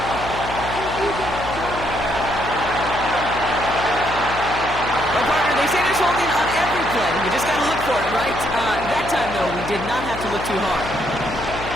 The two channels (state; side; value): noise; left; hum, 10 dB below the sound